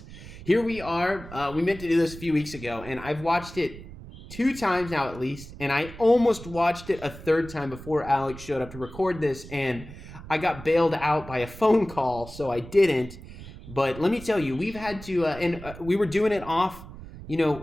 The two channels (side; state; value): right; noise; rumble, 15 dB below the sound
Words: here we are. We meant to do this a few weeks ago, and I've watched it 2 times now at least, and I almost watched it a 3rd time before Alex showed up to record this, and I got bailed out by a phone call, so I didn't. But let me tell you, we've had to, we were doing it off,